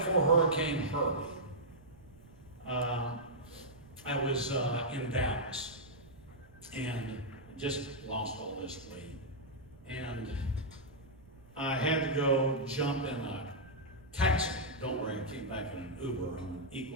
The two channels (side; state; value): right; noise; rumble, 23 dB below the sound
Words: Hurricane Harvey, I was in Dallas and just lost all this weight. And I had to go jump in a taxi. Don't worry, I came back in an Uber. I'm an